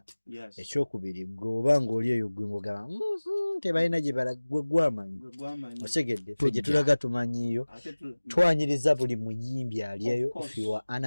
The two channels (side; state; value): both; inverted; correlation -1.00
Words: ekyokubiri gobanga oli eyo gwe ngogaba tebalina gye balagwe gwamanyi osegedde ffe gye tulaga tumanyiyo twanyiriza buli muyimbi ali eyo if you are an